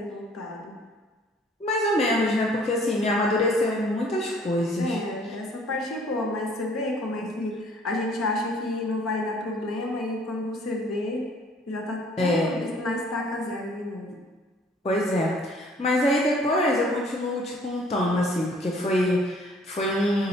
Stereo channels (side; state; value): both; normal; correlation 0.57